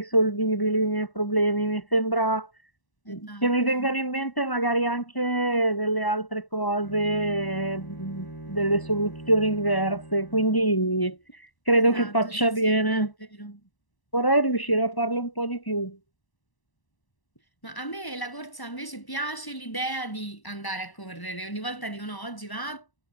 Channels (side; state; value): right; late; 1.0 ms